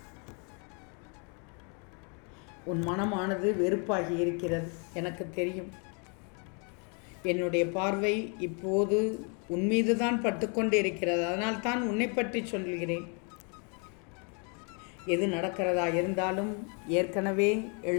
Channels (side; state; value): right; quieter; 36.9 dB